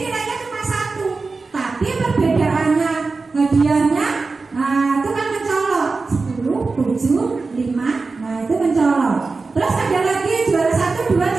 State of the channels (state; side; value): quieter; left; 4.0 dB